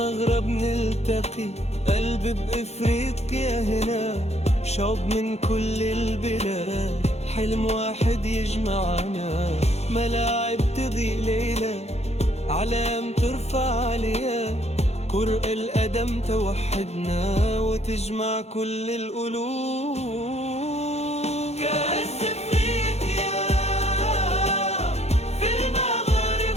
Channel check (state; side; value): late; right; 0.31 ms